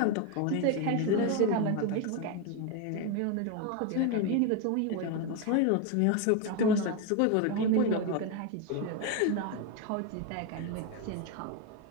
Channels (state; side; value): different; both; correlation 0.02